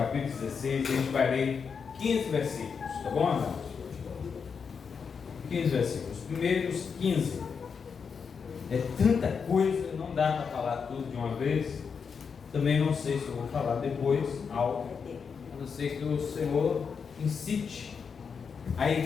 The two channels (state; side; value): quieter; right; 6.0 dB